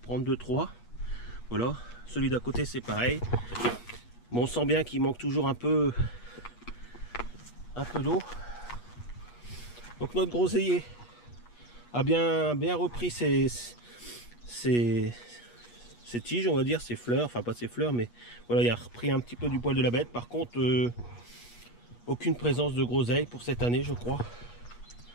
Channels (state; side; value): late; right; 8.3 ms